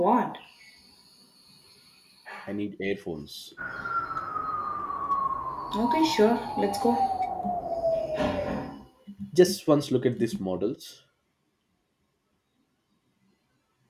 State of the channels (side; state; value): both; identical; correlation 1.00